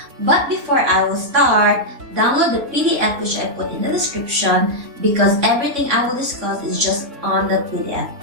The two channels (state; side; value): late; left; 3.6 ms